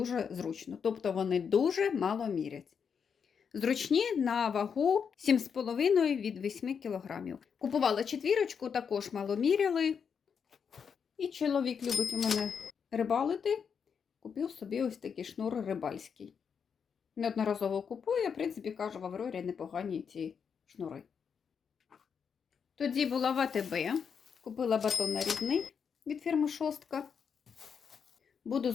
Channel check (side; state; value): right; quieter; 6.7 dB